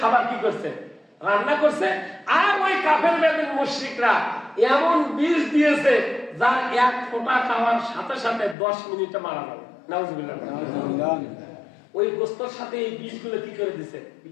কি করছে? রান্না করছে। আর ওই কাফের বেদিন মুশরিকরা এমন বিষ দিয়েছে যার এক ফোঁটা খাওয়ার সাথে সাথে 10 মিনিটে মারা যাবে। নাউজুবিল্লাহ। ওই গোস্তর সাথে এই বিষগুলো কি করে দিছে?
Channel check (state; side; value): drops out; right; at 8.6 s